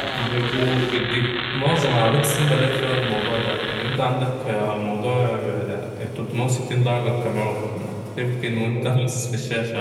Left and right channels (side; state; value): both; identical; correlation 1.00